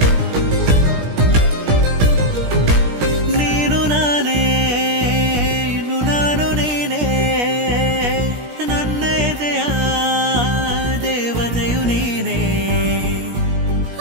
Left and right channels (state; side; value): late; left; 17 ms